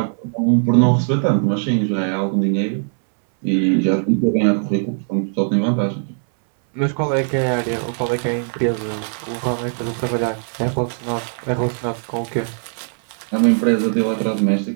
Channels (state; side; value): silent; left; 65 dB below the other